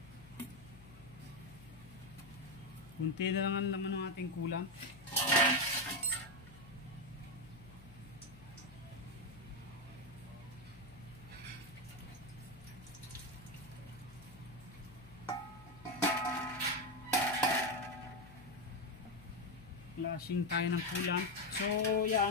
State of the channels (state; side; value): noise; left; hum, 20 dB below the sound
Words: Kunti na lang ang laman ng ating coolant. Flashing tayo ng coolant. So